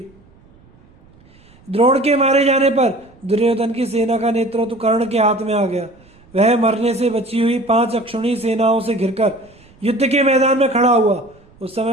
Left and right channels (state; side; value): noise; right; rumble, 28 dB below the sound